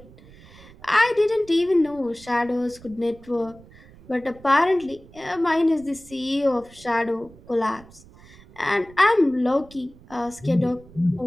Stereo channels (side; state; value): right; noise; rumble, 23 dB below the sound